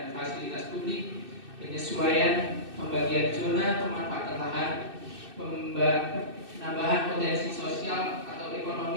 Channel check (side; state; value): left; late; 2.6 ms